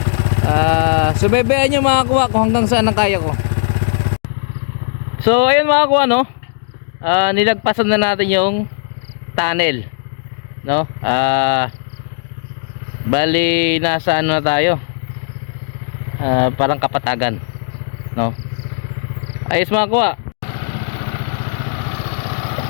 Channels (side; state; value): right; silent; digital silence